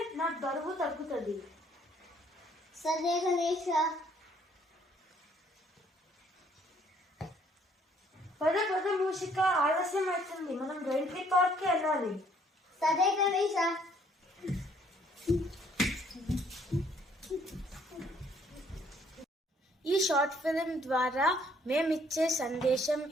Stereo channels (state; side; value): normal; both; correlation 0.63